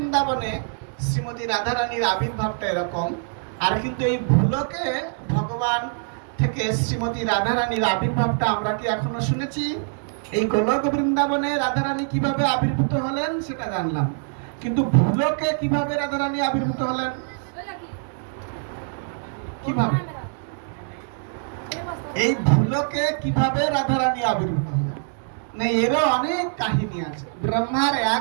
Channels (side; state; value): left; silent; 61 dB below the other